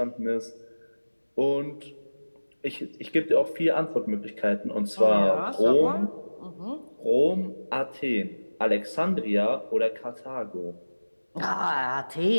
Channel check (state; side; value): inverted; both; correlation -1.00